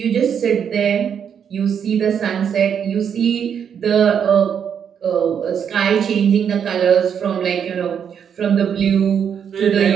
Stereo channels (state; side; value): quieter; left; 7.9 dB